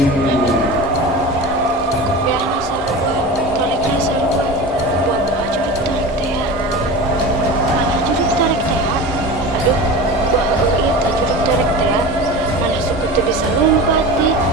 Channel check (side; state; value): both; normal; correlation 0.31